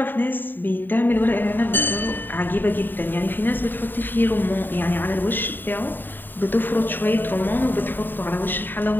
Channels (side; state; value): right; late; 0.092 ms